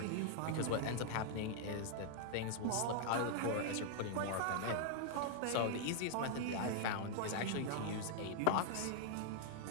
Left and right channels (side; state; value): both; different; correlation 0.00